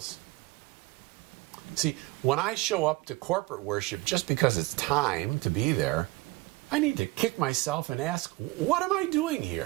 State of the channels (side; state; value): left; quieter; 21.5 dB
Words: See, when I show up to corporate worship just because it's time to be there, I need to kick myself and ask, what am I doing